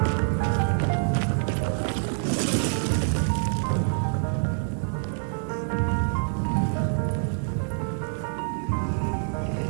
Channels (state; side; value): silent; left; digital silence